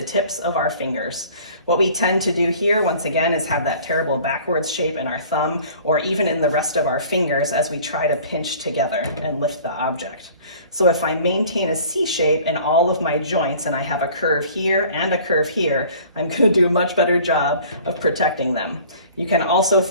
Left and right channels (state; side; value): inverted; both; correlation -0.48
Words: tips of our fingers. What we tend to do here, once again, is have that terrible backwards shape in our thumb or even in the rest of our fingers as we try to pinch together and lift the object. So if I maintain a C shape in all of my joints and I have a curve here and a curve here, I'm going to do a much better job of protecting them. You can also